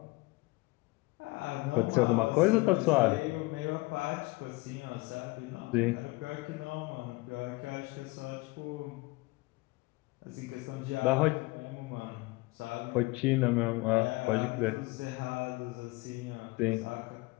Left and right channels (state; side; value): quieter; right; 23.5 dB